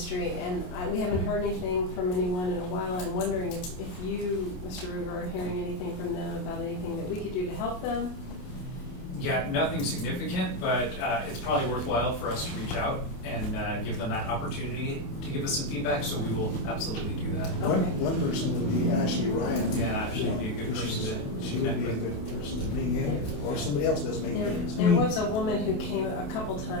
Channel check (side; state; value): right; late; 28 ms